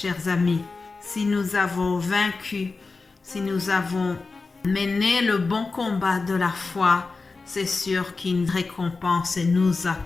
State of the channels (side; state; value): right; quieter; 4.0 dB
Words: amis. Si nous avons vaincu, si nous avons mené le bon combat de la foi, c'est sûr qu'une récompense nous